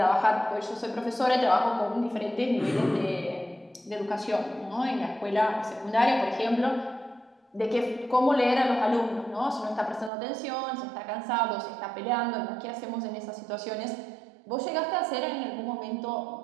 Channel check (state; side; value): drops out; left; at 10.1 s